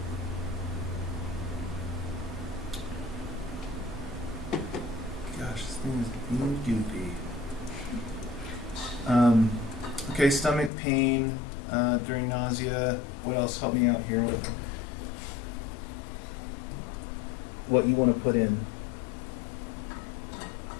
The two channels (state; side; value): drops out; right; at 10.7 s